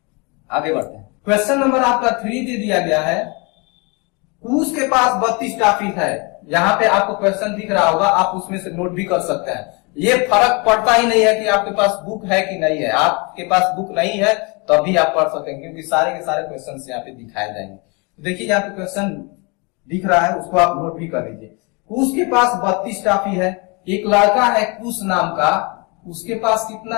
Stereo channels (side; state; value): right; quieter; 30.2 dB